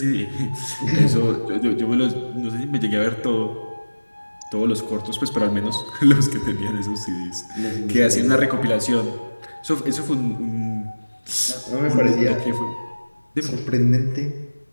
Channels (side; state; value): both; inverted; correlation -1.00